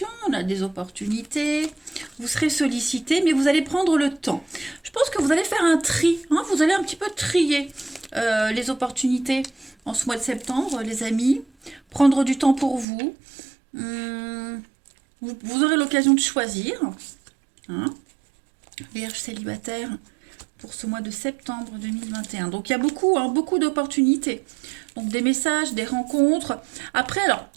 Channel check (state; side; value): drops out; left; at 12.9 s